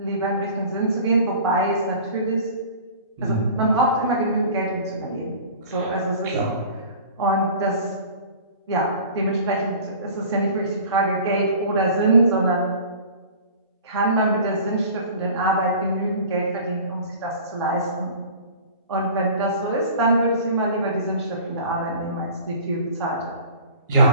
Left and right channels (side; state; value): both; inverted; correlation -0.42